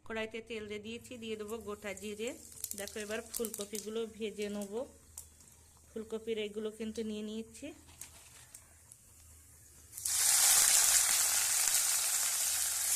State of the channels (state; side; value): identical; both; correlation 1.00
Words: কড়াইতে তেল দিয়ে দিয়েছি, দিয়ে দেবো গোটা জিরে। দেখো এবার ফুলকপিগুলো ভেজে নেব। ফুলকপির এগুলো কিন্তু নিয়ে নিয়েছি।